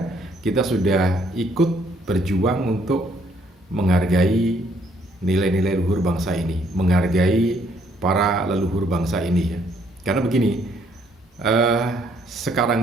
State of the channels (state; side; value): normal; both; correlation 0.67